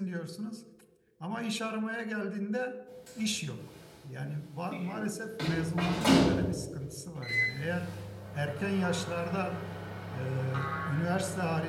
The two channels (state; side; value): identical; both; correlation 1.00